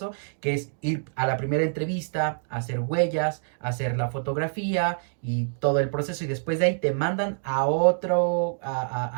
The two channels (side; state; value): left; silent; digital silence